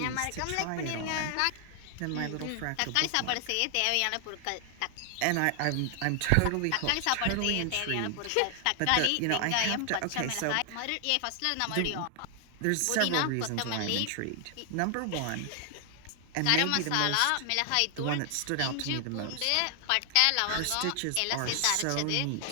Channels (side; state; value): both; different; correlation 0.00